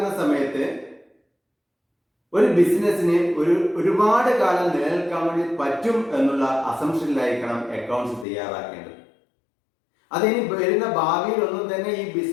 സമയത്ത് ഒരു ബിസിനസ്സിന് ഒരുപാട് കാലം നിലനിൽക്കാൻ വേണ്ടി പറ്റും എന്നുള്ള അസംഷനിലായിരിക്കണം അക്കൗണ്ട്സ് തയ്യാറാക്കേണ്ടത്. അതിനി വരുന്ന ഭാവിയിൽ ഒന്നും തന്നെ ഈ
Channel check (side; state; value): right; drops out; at 8.2 s